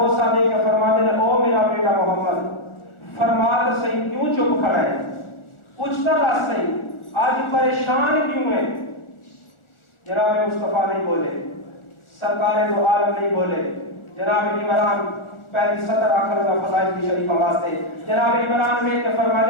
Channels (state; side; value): late; right; 1.4 ms